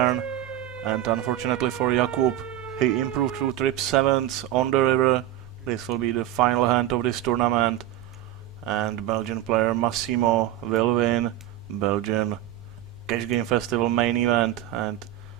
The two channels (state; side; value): quieter; left; 12.8 dB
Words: And unfortunately for Jakub, he improved through trip 7s on the river. This will be the final hand of this tournament. And Belgian player Massimo will win Belgian Cash Game Festival main event. And